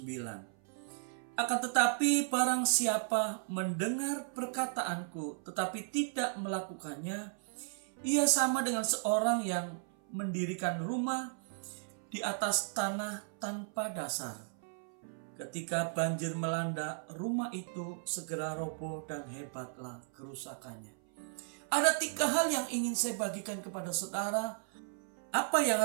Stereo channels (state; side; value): silent; left; 54 dB below the other